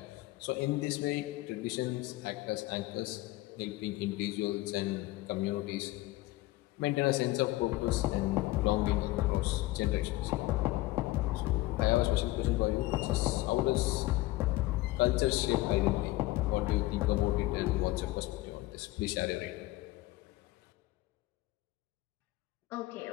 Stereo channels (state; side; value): quieter; right; 18.6 dB